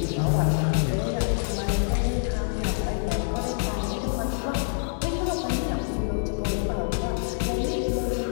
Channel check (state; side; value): silent; right; digital silence